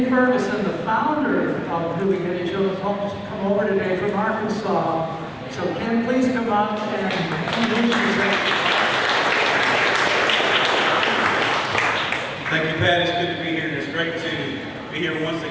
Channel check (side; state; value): both; identical; correlation 1.00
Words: Ferguson, the founder of New Beginning Children's Homes, to come over today from Arkansas. So Kim, please come up and introduce yourself. Thank you, Pat. It's good to be here, and it's great to be here once